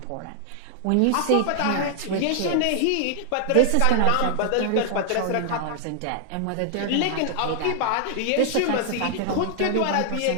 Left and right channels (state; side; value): different; both; correlation 0.00